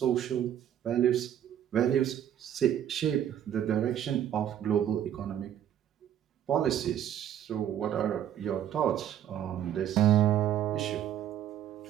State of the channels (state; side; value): quieter; left; 10.5 dB